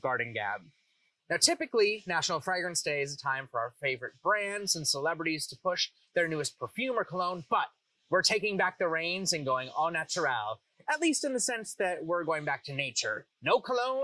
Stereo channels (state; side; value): identical; both; correlation 1.00